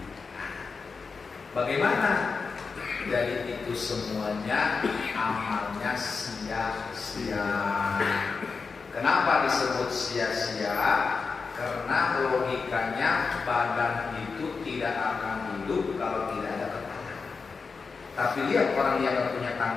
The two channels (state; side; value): quieter; right; 4.9 dB